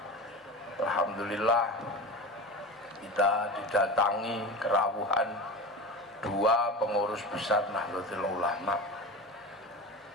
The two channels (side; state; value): both; normal; correlation 0.28